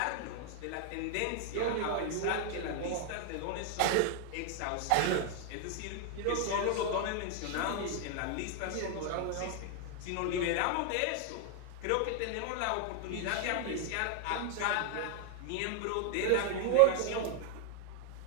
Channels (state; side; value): different; both; correlation 0.00